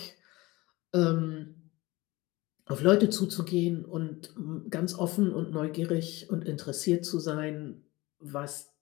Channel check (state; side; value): quieter; right; 21.3 dB